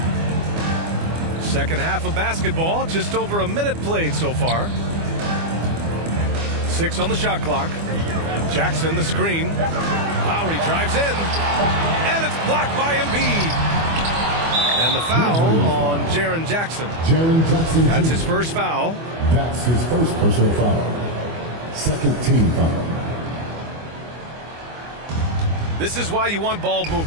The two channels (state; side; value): late; left; 24 ms